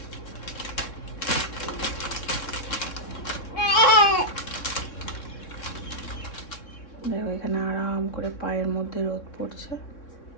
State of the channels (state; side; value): late; right; 3.6 ms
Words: দেখো এখানে আরাম করে পায়ের মধ্যে রোদ পড়ছে,